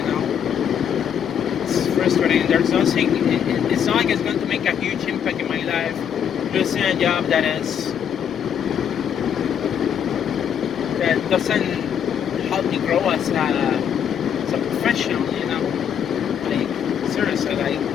it's frustrating. There's nothing, it's not like it's going to make a huge impact in my life losing a job that doesn't help me grow as a professional, like seriously, like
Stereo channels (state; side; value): quieter; right; 8.5 dB